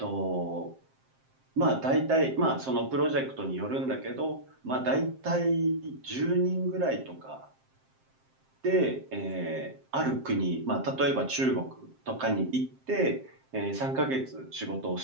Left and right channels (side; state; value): left; late; 7.6 ms